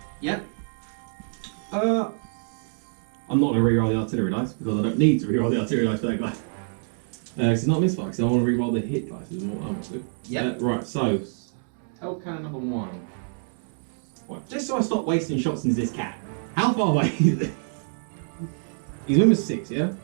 Yep. I'm not gonna reroll the artillery dice because I don't need to reroll the artillery dice for that guy. It's not misfire, because I want to reroll the hit dice is what I want to. Yep. Right, so Hellcannon number 1. Right, just so I stop wasting shots into this cat. How far away is it? He's moving 6, yeah?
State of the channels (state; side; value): silent; left; digital silence